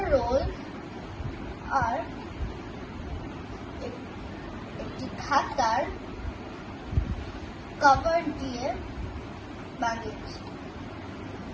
রোল আর একটি খাতার কভার দিয়ে বানিয়েছি।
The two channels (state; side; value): identical; both; correlation 1.00